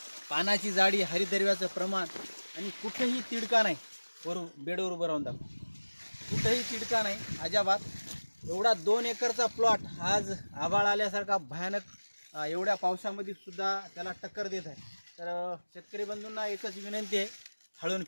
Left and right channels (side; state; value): both; inverted; correlation -1.00